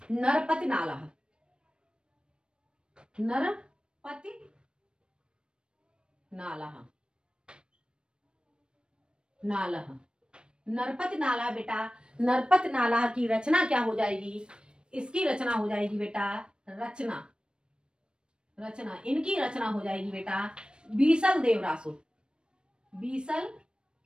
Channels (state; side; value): late; left; 0.054 ms